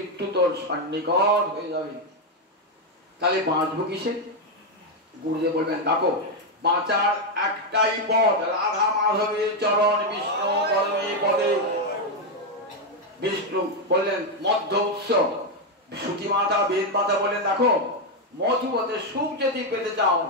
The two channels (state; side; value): normal; both; correlation 0.04